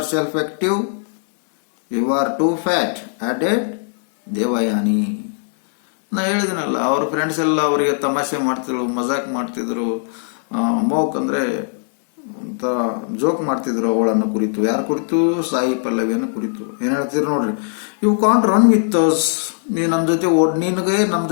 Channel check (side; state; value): right; silent; digital silence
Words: active. You are too fat, added Devayani. ನಾ ಹೇಳಿದಿನಲ್ಲ, ಅವ್ರ ಫ್ರೆಂಡ್ಸ್ ಎಲ್ಲ ಅವರಿಗೆ ತಮಾಷೆ ಮಾಡ್ತಿದ್ರು, ಮಜಾಕ್ ಮಾಡ್ತಿದ್ರು, ಮೋಕ್ ಅಂದರೆ ಅಂತ ಜೋಕ್ ಮಾಡ್ತಿದ್ರು ಅವಳನ್ನು ಕುರಿತು. ಯಾರ ಕುರಿತು? ಸಾಯಿ ಪಲ್ಲವಿಯನ್ನು ಕುರಿತು. ಏನು ಹೇಳ್ತಿದ್ರು ನೋಡ್ರಿ, you can't run with us. ನೀನು ನಮ್ಮ ಜೊತೆ ನಿನಗೆ ನಮ್ಮ